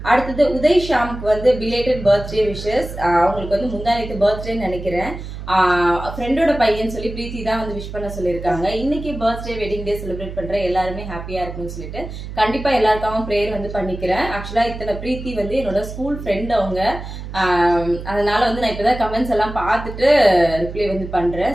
அடுத்தது உதய் ஷாமுக்கு வந்து பிலேட்டட் பர்த்டே விஷஸ். அவங்களுக்கு வந்து முந்தானத்து பர்த்டேன்னு நினைக்கிறேன். ஃப்ரெண்டோட பையன் சொல்லி பிரீத்தி தான் வந்து விஷ் பண்ண சொல்லியிருக்காங்க. இன்னைக்கு பர்த்டே வெட்டிங் டே செலிப்ரேட் பண்ற எல்லாருமே ஹாப்பியா இருக்குன்னு சொல்லிட்டு கண்டிப்பா எல்லாருக்காகவும் ப்ரேயர் வந்து பண்ணிக்கிறேன். ஆக்சுவலா இத்தனை பிரீத்தி வந்து என்னோட ஸ்கூல் ஃப்ரெண்ட் அவங்க. அதனால வந்து நான் இப்பதான் கமெண்ட்ஸ் எல்லாம் பார்த்துட்டு ரிப்ளை வந்து பண்றேன்.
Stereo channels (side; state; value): right; noise; hum, 10 dB below the sound